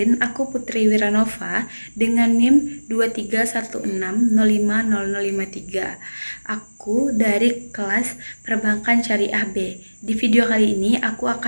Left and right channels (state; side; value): inverted; both; correlation -1.00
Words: aku Putri Wiranova dengan NIM 2316050053. Aku dari kelas Perbankan Syariah B. Di video kali ini aku